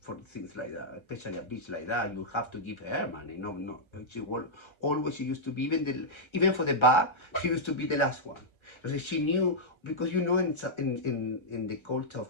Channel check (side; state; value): right; late; 1.3 ms